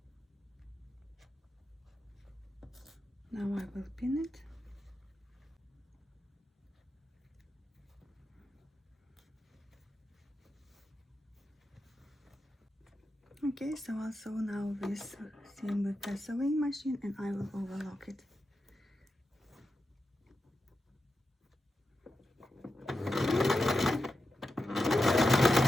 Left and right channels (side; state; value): both; normal; correlation 0.90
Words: Now I will pin it. Okay, so I'll sew now this seam with the sewing machine, and I will overlock it.